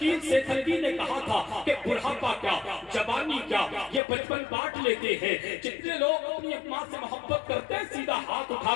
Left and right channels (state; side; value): drops out; right; at 4.0 s